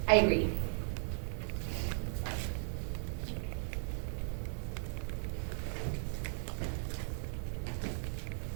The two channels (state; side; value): silent; left; digital silence